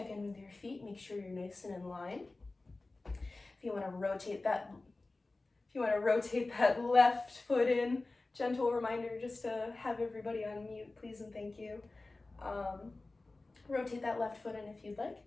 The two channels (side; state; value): right; quieter; 3.2 dB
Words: in with your feet, make sure you're nice and in line. If you want to rotate that left foot in, gentle reminder just to have everybody on mute, please and thank you. Rotate that left foot in if you'd like.